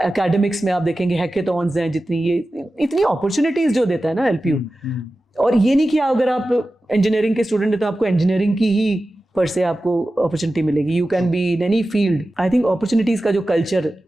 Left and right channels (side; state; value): both; normal; correlation 0.94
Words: में आप देखेंगे हैकेथॉन्स हैं, जितनी ये इतनी अपॉर्चुनिटीज जो देता है ना एलपीयू। और ये नहीं कि अगर आप इंजीनियरिंग के स्टूडेंट हैं तो आपको इंजीनियरिंग की ही पर से आपको अपॉर्चुनिटी मिलेगी. You can be in any field. I think opportunities का जो कल्चर